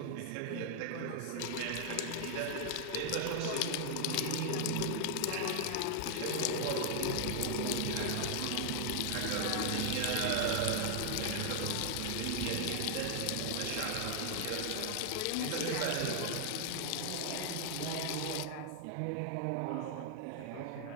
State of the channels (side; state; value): both; different; correlation 0.00